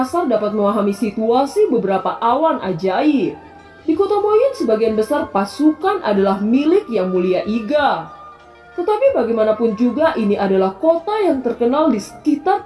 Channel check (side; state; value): both; identical; correlation 1.00